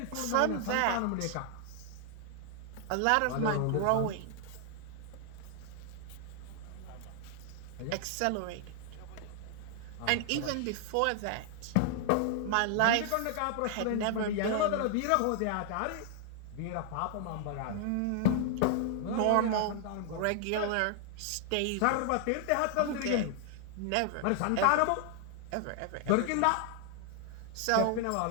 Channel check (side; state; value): both; different; correlation 0.00